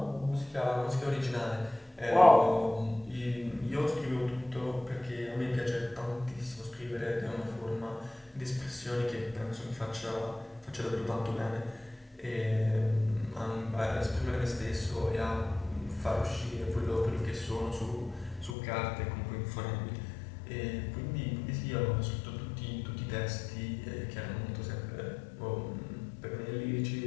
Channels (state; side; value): drops out; right; at 18.6 s